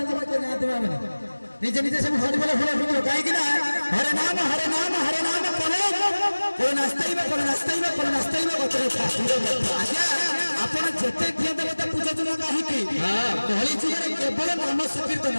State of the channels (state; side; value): inverted; both; correlation -1.00